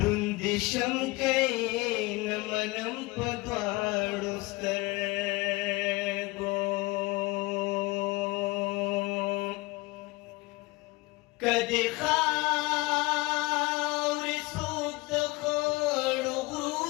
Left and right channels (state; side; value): quieter; right; 22.9 dB